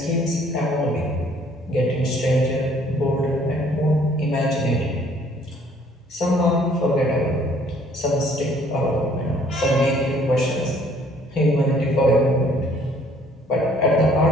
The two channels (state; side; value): normal; both; correlation 0.60